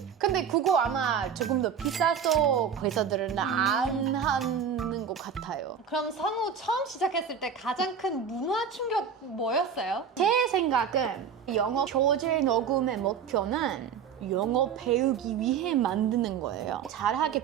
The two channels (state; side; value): quieter; left; 7.2 dB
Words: 근데 그거 아마 조금 더 비싸서 회사들은 안 하는 것 같아요. 그럼 성우 처음 시작했을 때 가장 큰 문화 충격 뭐였어요? 제 생각은 영어 교재 녹음의 목표는 영어 배우기 위해 만드는 거예요.